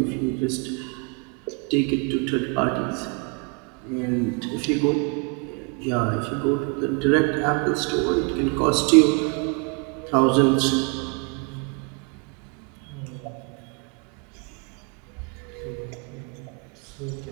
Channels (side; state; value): left; quieter; 34.7 dB